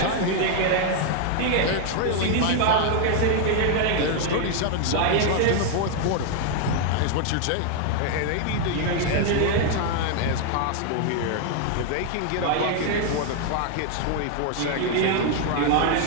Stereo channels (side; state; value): both; different; correlation 0.00